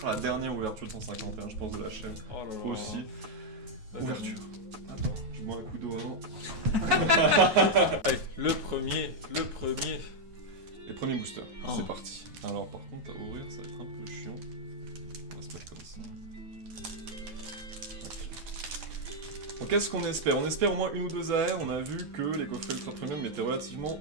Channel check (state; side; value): late; left; 9.4 ms